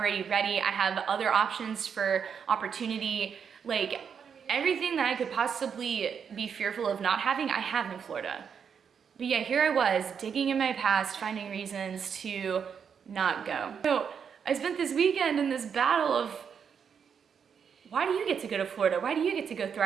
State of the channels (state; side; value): quieter; left; 7.0 dB